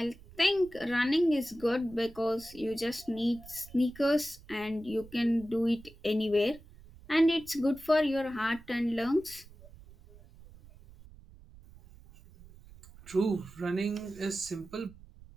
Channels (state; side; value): noise; right; rumble, 21 dB below the sound